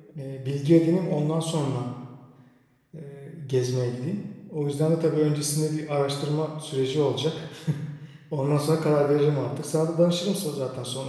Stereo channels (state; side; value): identical; both; correlation 1.00